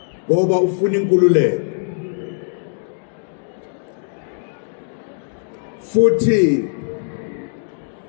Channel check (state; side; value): silent; right; digital silence